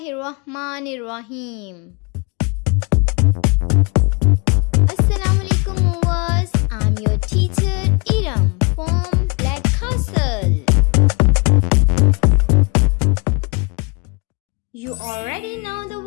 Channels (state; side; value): quieter; right; 31.3 dB